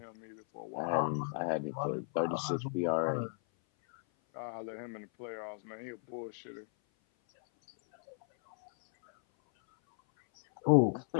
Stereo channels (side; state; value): right; silent; 54 dB below the other